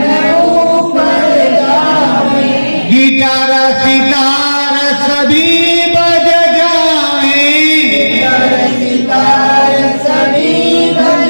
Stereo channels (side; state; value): both; inverted; correlation -1.00